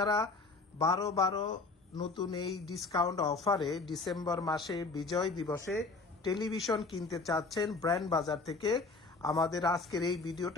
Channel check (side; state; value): right; quieter; 3.9 dB